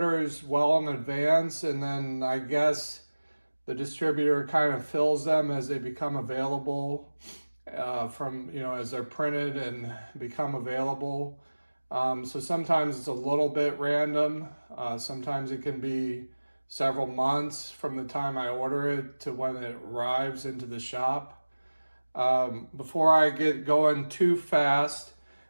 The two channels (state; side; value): inverted; both; correlation -1.00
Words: well in advance, and then I guess the distributor kind of fills them as they become available as they're printed and become available. So sometimes it's a little bit random. Sometimes it can be several months from the time I order it to when it arrives into the shop. Before I get going too fast,